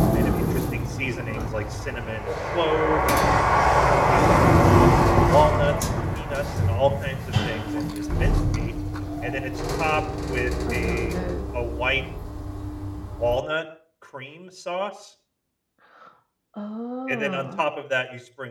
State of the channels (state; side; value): identical; both; correlation 1.00